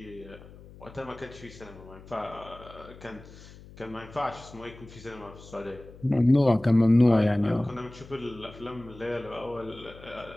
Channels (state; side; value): noise; left; hum, 19 dB below the sound